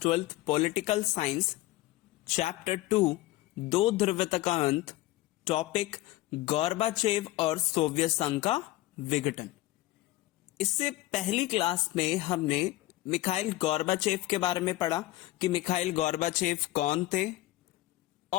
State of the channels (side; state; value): right; quieter; 17.5 dB